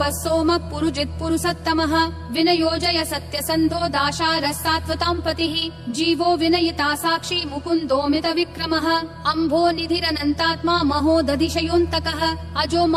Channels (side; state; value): both; identical; correlation 1.00